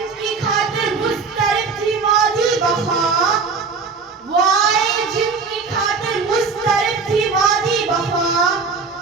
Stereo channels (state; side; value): quieter; left; 4.7 dB